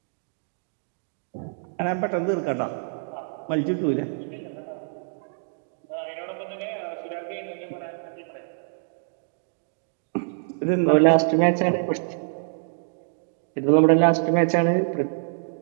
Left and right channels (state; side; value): silent; left; digital silence